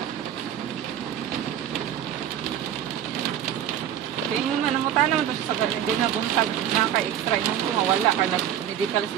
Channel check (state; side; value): quieter; left; 10.3 dB